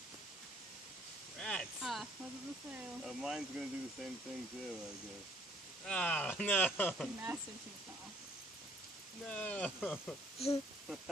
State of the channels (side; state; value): both; normal; correlation 0.59